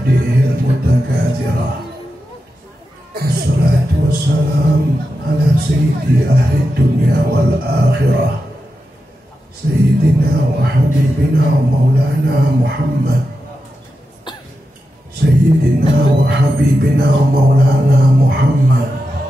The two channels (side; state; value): both; normal; correlation 0.89